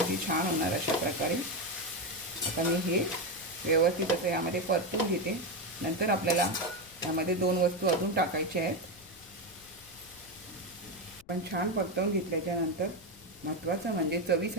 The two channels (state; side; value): noise; left; rumble, 25 dB below the sound